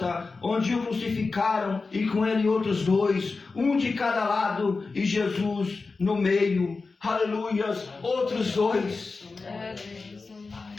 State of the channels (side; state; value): right; quieter; 4.1 dB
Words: onde o crucificaram, e com ele outros dois, um de cada lado e Jesus no meio. Aleluias, outros dois.